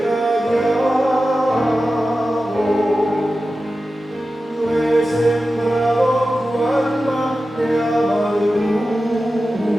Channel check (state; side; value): normal; both; correlation 0.93